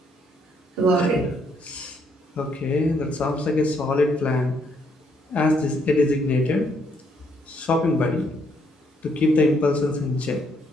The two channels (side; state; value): both; normal; correlation 0.71